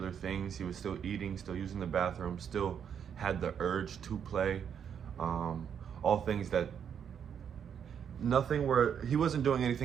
things. He was still eating, still using the bathroom, still had the urge to play. All things that he wasn't doing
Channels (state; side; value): quieter; left; 8.0 dB